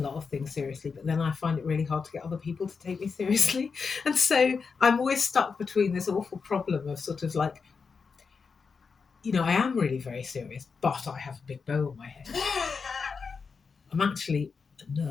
of things seriously, but then I find it really hard to get other people to take me seriously. And so I'm always stuck between this awful problem of sort of like, I am really very serious, but I have a big bow on my head. I'm actually a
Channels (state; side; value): quieter; right; 5.3 dB